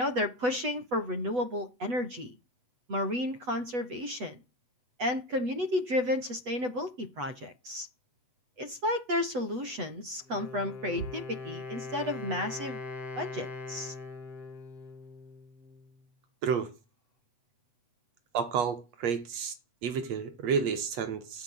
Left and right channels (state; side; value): late; left; 8.1 ms